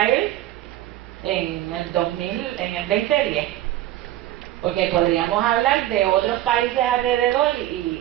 en el 2010, porque podríamos hablar de otros países alrededor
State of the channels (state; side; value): quieter; left; 14.2 dB